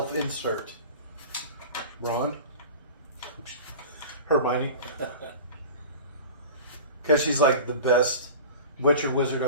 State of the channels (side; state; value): both; inverted; correlation -0.36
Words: Ron? Hermione. Because she's like the best Witcher wizard